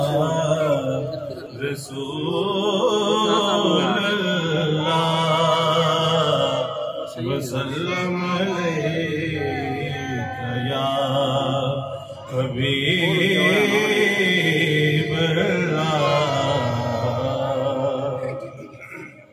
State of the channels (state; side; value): identical; both; correlation 1.00